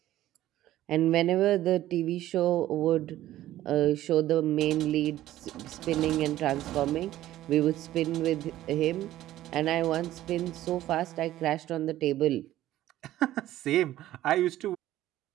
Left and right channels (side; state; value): left; quieter; 14.1 dB